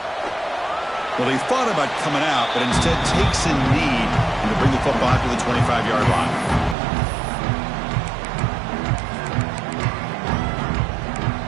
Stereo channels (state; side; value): drops out; left; at 6.8 s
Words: Well, he thought about coming out, but instead takes a knee to bring the football to the 25-yard line.